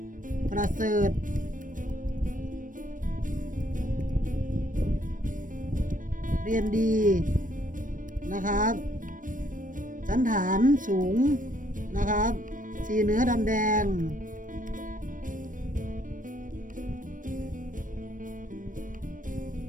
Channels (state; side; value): late; left; 0.38 ms